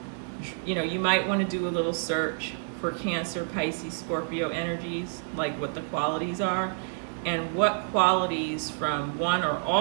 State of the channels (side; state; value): left; silent; digital silence